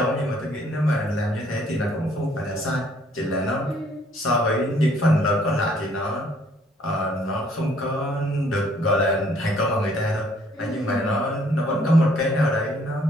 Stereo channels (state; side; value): normal; both; correlation 0.63